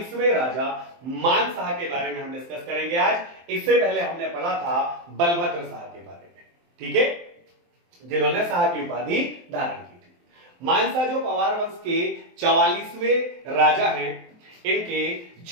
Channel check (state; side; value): late; left; 23 ms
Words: राजा मानशाह के बारे में हम डिस्कस करेंगे आज। इससे पहले हमने पढ़ा था बलभद्र शाह के बारे में, ठीक है, जिन्होंने शाह की उपाधि धारण की थी। मानशाह जो पवार वंश के 44वें राजा हैं, इनके